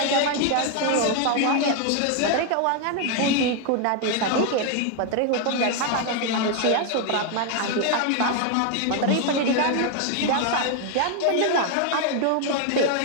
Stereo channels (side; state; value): both; different; correlation 0.01